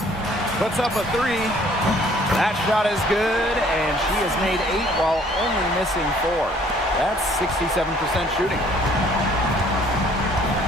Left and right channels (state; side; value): normal; both; correlation 0.59